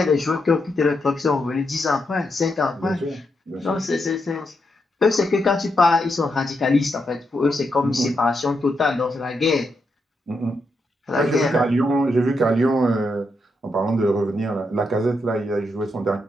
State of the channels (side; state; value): both; normal; correlation 0.82